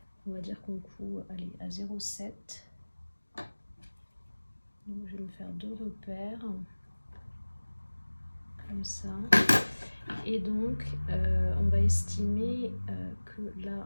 On va dire qu'on coud, allez, à 0,7. Donc, je vais me faire 2 repères. Comme ça. Et donc on va estimer que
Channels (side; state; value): both; inverted; correlation -1.00